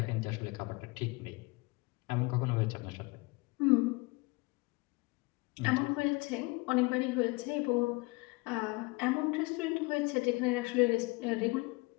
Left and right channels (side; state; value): right; quieter; 25.8 dB